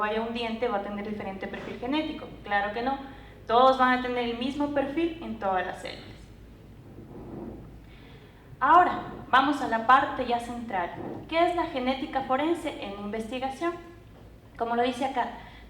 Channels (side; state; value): both; identical; correlation 1.00